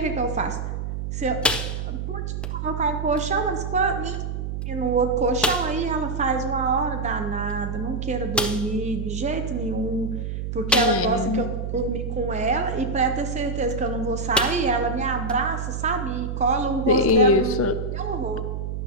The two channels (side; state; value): right; noise; hum, 4 dB below the sound